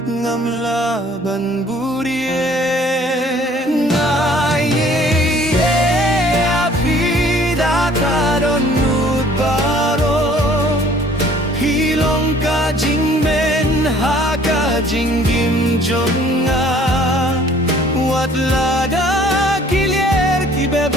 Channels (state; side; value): normal; both; correlation 0.55